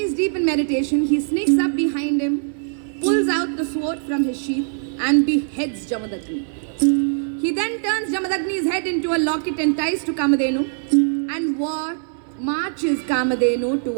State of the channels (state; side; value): silent; left; digital silence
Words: is deep in meditation, he sneaks up behind him, pulls out the sword from his sheath and beheads Jamadagni. He then turns Jamadagni's head into a locket and ties to Kamadhenu and marches Kamadhenu